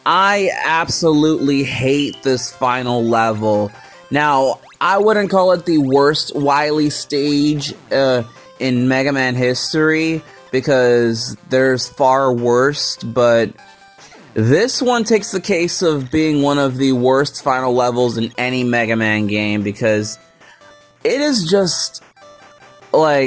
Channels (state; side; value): identical; both; correlation 1.00